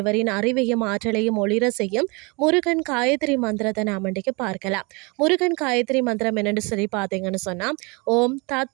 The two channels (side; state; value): left; quieter; 28.8 dB